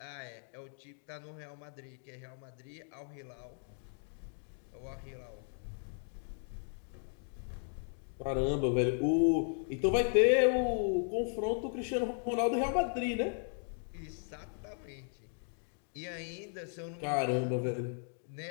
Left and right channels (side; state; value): right; silent; 54 dB below the other